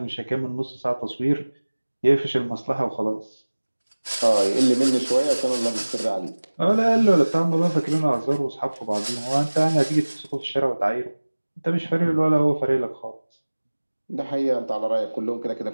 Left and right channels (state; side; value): inverted; both; correlation -1.00